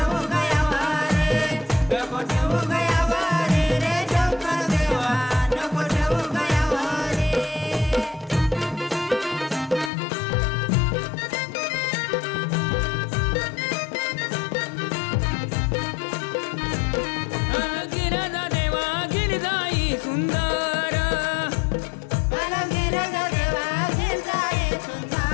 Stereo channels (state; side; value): drops out; right; at 9.9 s